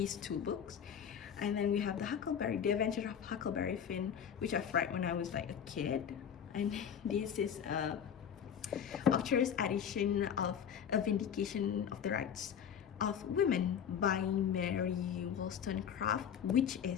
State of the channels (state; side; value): quieter; right; 8.2 dB